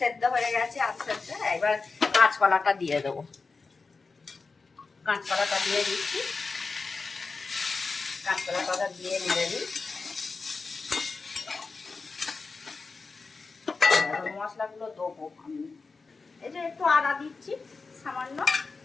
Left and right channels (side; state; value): right; quieter; 4.3 dB